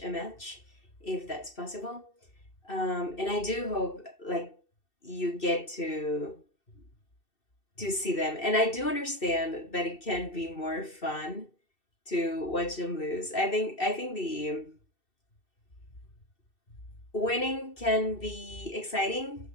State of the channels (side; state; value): right; late; 2.7 ms